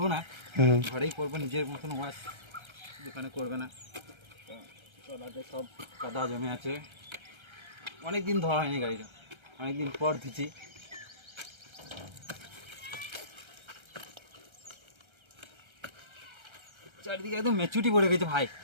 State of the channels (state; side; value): late; left; 1.3 ms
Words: না, ঘরেই করবো, নিজের মতন ওয়াশ, দোকানে করবে না। তলাতে সব কাদা জমে আছে, অনেক দিন ধোয়া হয়নি গাড়িটা, অনেকদিন পর ধুচ্ছি। চারিদিকে একদম মেচুটি পড়ে গেছে ভাই।